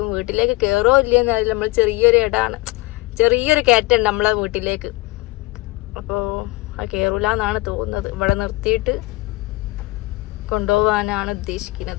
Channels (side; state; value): right; quieter; 21.6 dB